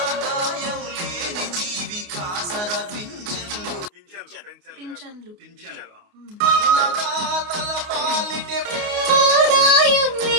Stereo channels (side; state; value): left; late; 29 ms